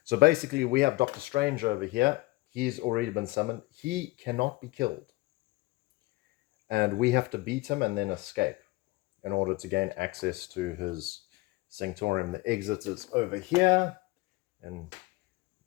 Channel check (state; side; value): quieter; right; 22.0 dB